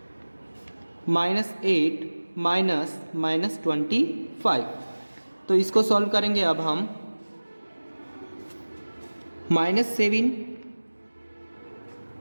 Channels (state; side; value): inverted; both; correlation -1.00